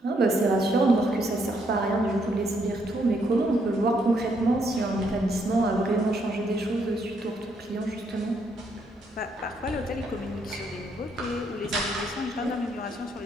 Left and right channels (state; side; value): normal; both; correlation 0.73